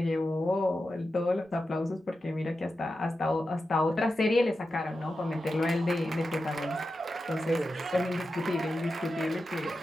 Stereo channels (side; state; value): both; normal; correlation 0.90